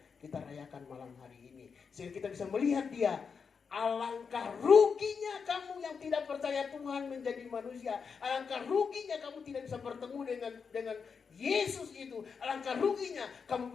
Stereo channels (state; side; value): quieter; right; 5.8 dB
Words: kita rayakan malam hari ini. Sehingga kita bisa melihat dia. Alangkah ruginya kamu yang tidak percaya Tuhan menjadi manusia. Alangkah ruginya kamu tidak bisa bertemu dengan Yesus itu. Alangkah ruginya kamu